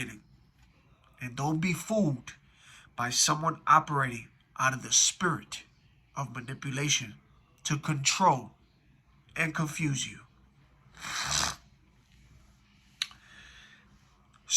And don't be fooled by someone operating out of the spirit of manipulation to control and confuse you.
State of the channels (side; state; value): both; identical; correlation 1.00